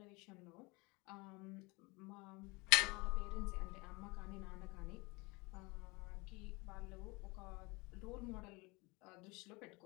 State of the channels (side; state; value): right; quieter; 25.9 dB